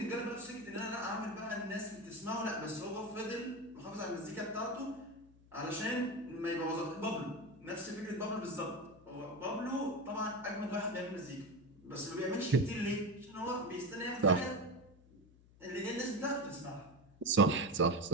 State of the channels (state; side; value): noise; left; hum, 25 dB below the sound